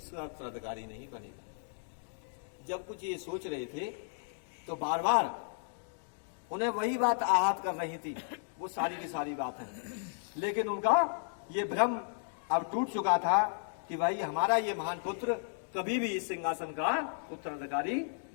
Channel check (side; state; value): right; silent; digital silence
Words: उत्तराधिकारी नहीं बनेगा। जब कुछ ये सोच रहे थे तो बार बार उन्हें वही बात आहत कर रही थी, वो सारी की सारी बात है। लेकिन उनका ये भ्रम अब टूट चुका था कि भाई हमारा ये महान पुत्र कभी भी इस सिंहासन का उत्तराधिकारी